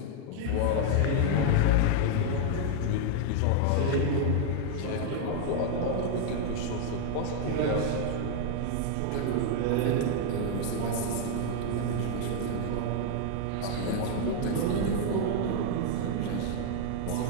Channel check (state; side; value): different; both; correlation 0.00